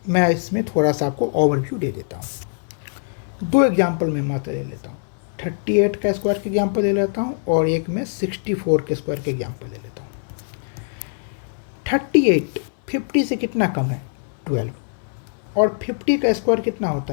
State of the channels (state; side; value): silent; right; digital silence